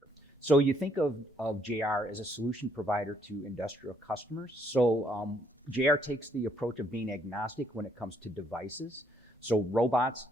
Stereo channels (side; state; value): both; normal; correlation 0.69